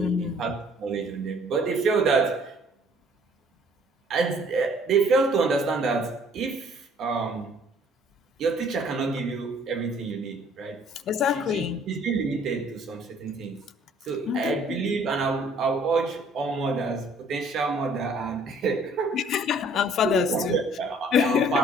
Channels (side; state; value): both; normal; correlation 0.57